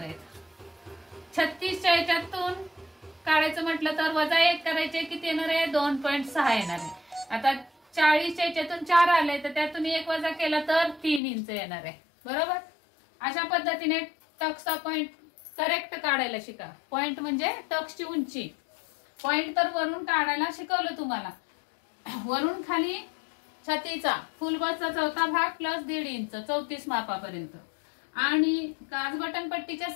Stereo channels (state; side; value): drops out; right; at 11.2 s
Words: आहेत. 36च्या याच्यातून काढायचं म्हटलं तर वजा 1 करायचे, किती येणार आहे 2.6 येणार आहे. आता 40च्या याच्यातून 4 आले तर त्यातून 1 वजा केला तर 3 इंच येणार आहे, बरोबर? अशा पद्धतीने टक्सचा पॉइंट करेक्ट काढायला शिका. पॉइंट म्हणजे टक्सची उंची. पॉइंट तर वरून काढायला शिकवलं तुम्हाला. वरून खाली छातीचा फुलबसचा 4था भाग प्लस 1.5 इंच 34 मापापर्यंत. आणि काज बटन पट्टीच्या